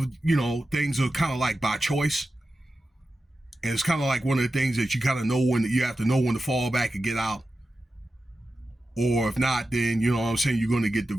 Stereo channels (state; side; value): normal; both; correlation 0.92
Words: things are kind of like by choice, and it's kind of like one of the things that you kind of know when you have to know when to fall back and get out, or if not, then you're going to get